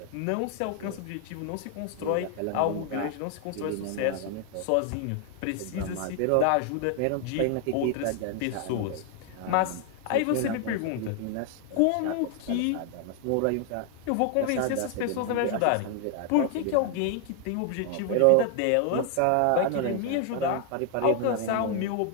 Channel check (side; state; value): both; different; correlation 0.00